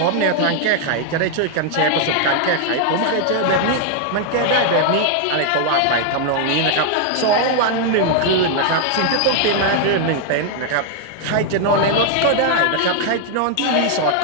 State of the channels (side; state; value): both; different; correlation 0.00